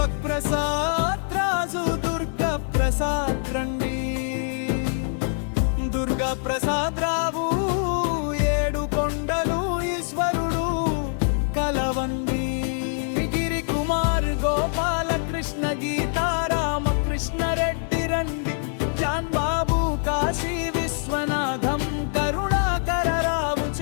ప్రసాద్ రాజు దుర్గ ప్రసాద్ రండి దుర్గా ప్రసాద్ రావు ఏడు కొండలు ఈశ్వరుడు కలవండి గిరి కుమార్ గోపాలకృష్ణ గీతారామకృష్ణ రెడ్డి రండి జాన్ బాబు కాశీ విశ్వనాథం కరుణాకర రావు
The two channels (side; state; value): right; silent; 62 dB below the other